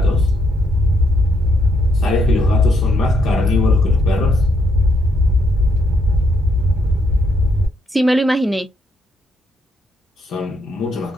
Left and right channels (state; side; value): normal; both; correlation 0.75